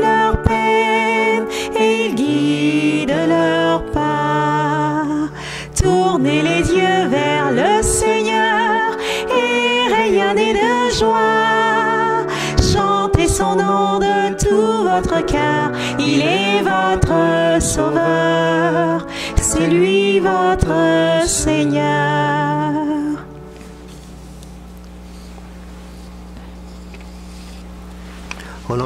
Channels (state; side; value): identical; both; correlation 1.00